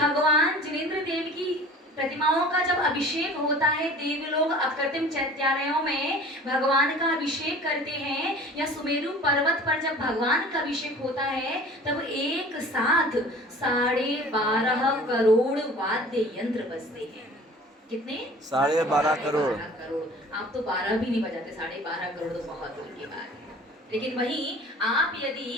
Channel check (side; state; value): both; normal; correlation 0.44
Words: जिनेंद्र देव की प्रतिमाओं का जब अभिषेक होता है, देवलोग अकृत्रिम चैत्यालयों में भगवान का अभिषेक करते हैं, या सुमेरु पर्वत पर जब भगवान का अभिषेक होता है तब एक साथ 12.5 करोड़ वाद्य यंत्र बजते हैं। कितने? 12.5 करोड़। आप तो 12 भी नहीं बजाते, 12.5 करोड़ तो बहुत दूर की बात है। लेकिन वहीं आप